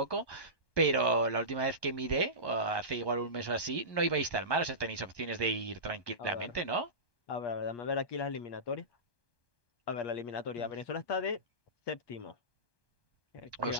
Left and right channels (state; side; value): late; right; 1.2 ms